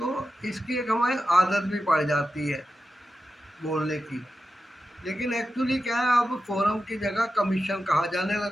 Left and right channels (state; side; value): normal; both; correlation 0.91